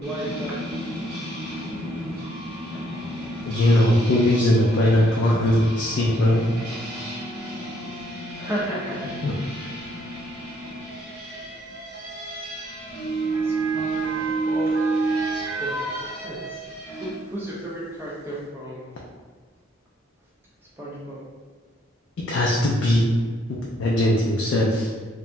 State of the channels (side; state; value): both; normal; correlation 0.69